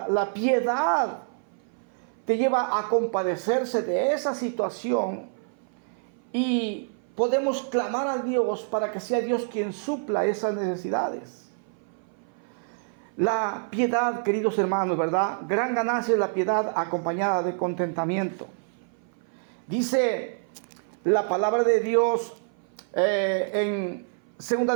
piedad te lleva a compadecerse de esa situación y podemos clamar a Dios para que sea Dios quien supla esas necesidades. La piedad, queridos hermanos, ¿verdad? Gran ganancia es la piedad acompañada de contentamiento. Dice la palabra de Dios en 2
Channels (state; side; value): silent; left; 57 dB below the other